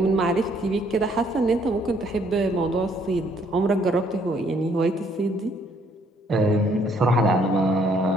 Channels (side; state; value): both; normal; correlation 0.66